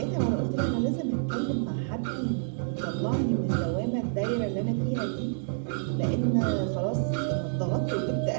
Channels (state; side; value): silent; left; 57 dB below the other